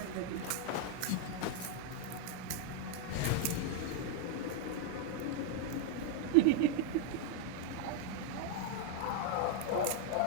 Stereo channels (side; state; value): both; different; correlation 0.00